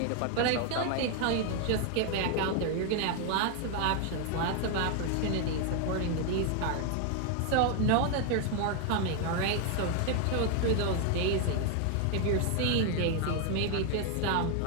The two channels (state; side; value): different; both; correlation 0.00